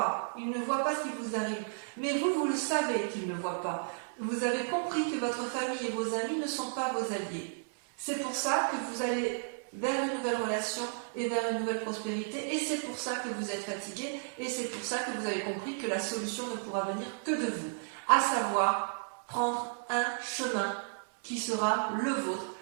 ce qui vous arrive, mais vous le savez qu'ils ne voient pas, vous avez compris que votre famille et vos amis ne sont pas vos alliés, c'est pour ça que vous allez vers une nouvelle relation et vers une nouvelle prospérité, et c'est pour ça que vous êtes fatigué, et c'est pour ça que vous avez compris que la solution ne pourra venir que de vous, à savoir prendre un chemin qui sera le vôtre,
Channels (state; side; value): silent; left; 56 dB below the other